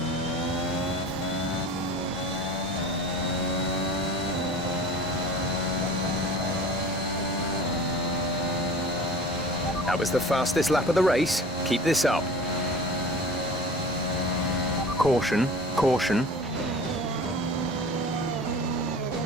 That was the fastest lap of the race. Keep this up. Caution, caution.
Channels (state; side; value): normal; both; correlation 0.40